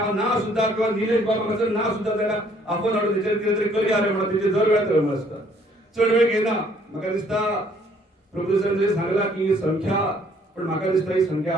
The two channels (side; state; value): both; normal; correlation 0.62